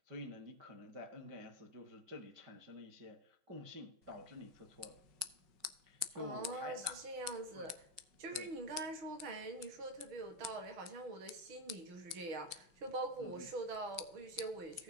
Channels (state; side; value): late; left; 5.4 ms